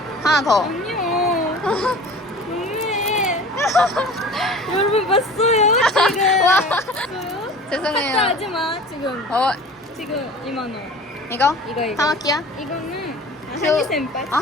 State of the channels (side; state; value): both; normal; correlation 0.41